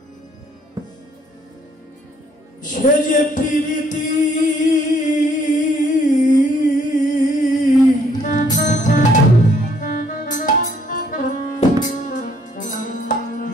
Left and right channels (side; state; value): both; normal; correlation 0.65